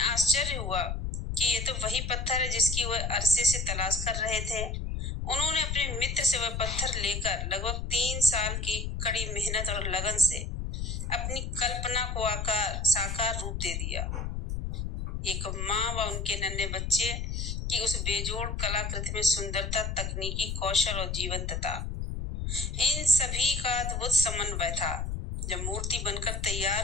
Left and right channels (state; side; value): noise; left; rumble, 3 dB below the sound